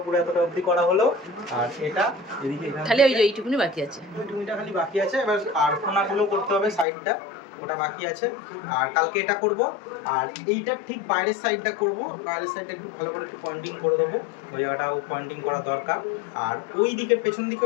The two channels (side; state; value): right; drops out; at 6.9 s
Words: পুরো এতটা অবধি করা হলো। আর এটা এদিকে খালি ওই যে এইটুকুনি বাকি আছে, ওইটুকুনিটা খালি বাকি আছে। এবার আর কোণাগুলো করতে হবে, সাইডটা ওটা বাকি আছে। আর কালকে এটা করব, আর এইটা ঠিক বাইরের সাইডটা করব। বাইরের সাইডটা একটু ভালো করে একটু পয়েন্টিং করে দেবো, ওই জায়গাটাও পয়েন্টিং করা দরকার। আর ওই দিকের পেছন